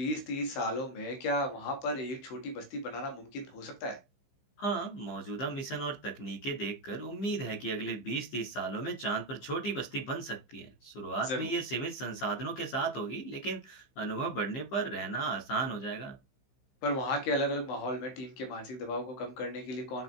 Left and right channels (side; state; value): right; late; 15 ms